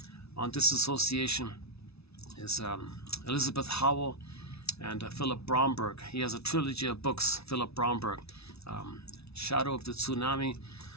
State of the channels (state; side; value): late; right; 0.79 ms